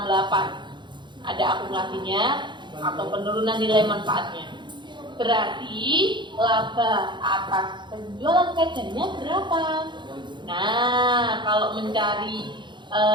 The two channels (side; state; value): left; late; 0.23 ms